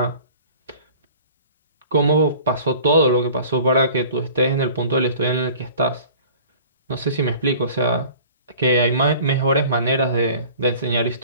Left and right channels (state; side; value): inverted; both; correlation -0.46